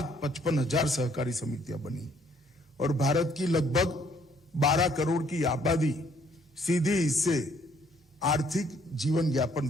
सहकारी समितियां बनी और भारत की लगभग 12 करोड़ की आबादी सीधी इससे आर्थिक जीवन यापन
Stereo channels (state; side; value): normal; both; correlation 0.65